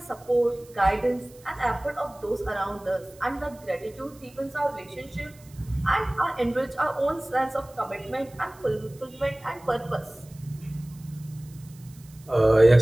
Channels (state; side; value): noise; right; hiss, 25 dB below the sound